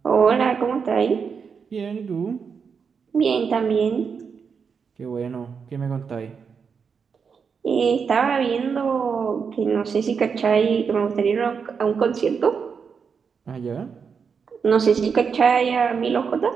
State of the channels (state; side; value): quieter; left; 6.1 dB